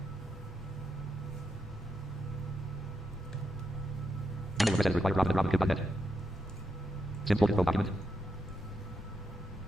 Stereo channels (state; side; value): normal; both; correlation 0.84